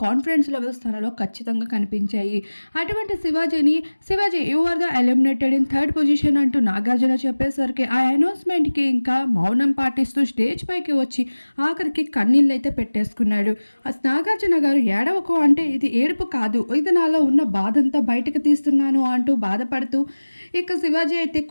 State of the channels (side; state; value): both; inverted; correlation -1.00